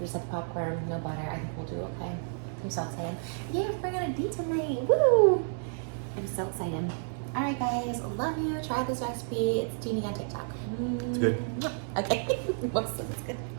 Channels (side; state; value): left; silent; digital silence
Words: just have the popcorn, no butter. I think we'll do okay. I'm so excited. Yeah, we're bringing a date tonight. Woo! I'm so excited. All right, guys. Love you. Try this recipe. It's Teeny on TikTok. It's good. Okay. Whoops, it's good.